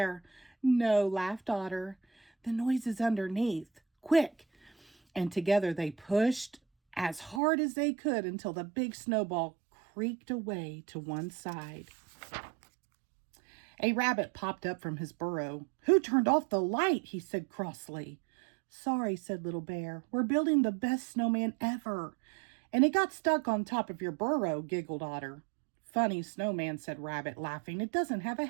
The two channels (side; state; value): left; drops out; at 7.4 s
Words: "No," laughed Otter. "The noise is underneath. Quick!" And together they pushed as hard as they could until the big snowball creaked away to one side. A rabbit popped up from his burrow. "Who turned off the light?" he said crossly. "Sorry," said Little Bear. "We're building the best snowman ever." "And it got stuck on top of your burrow," giggled Otter. "Funny snowman," said Rabbit, laughing. "It doesn't have a